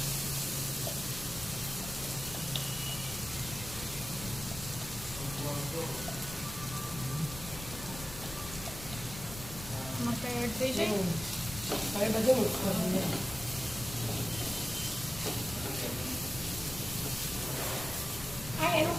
મકાઈ એડ થઈ જાય. હવે બધું મિક્સ કરી દઈએ. આ એનું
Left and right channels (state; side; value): noise; left; rumble, 12 dB below the sound